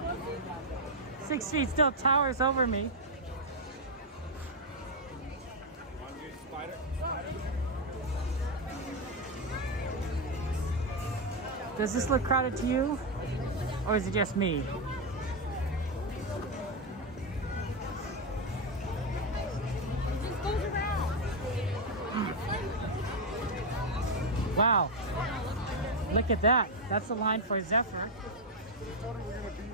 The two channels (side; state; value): both; normal; correlation 0.04